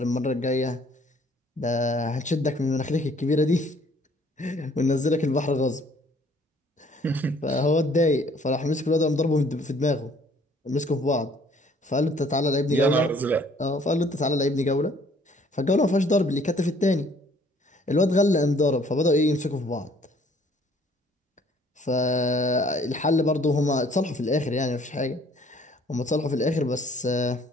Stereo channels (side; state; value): both; normal; correlation 0.59